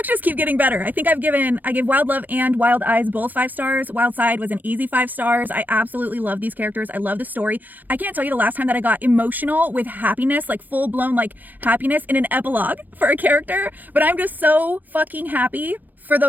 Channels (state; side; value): late; left; 0.084 ms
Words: just keep getting better. I think I gave Wild Love and Wild Eyes both 5 stars. Wildside was an easy 5 stars. I absolutely love these characters. I love the story. I can't tell you the last time that I got emotional with happiness, like full blown like happiness in an epilogue for a character, but I'm just so fucking happy for